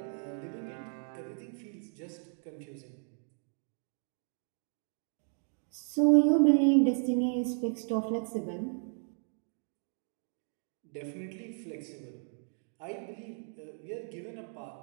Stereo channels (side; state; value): left; silent; 55 dB below the other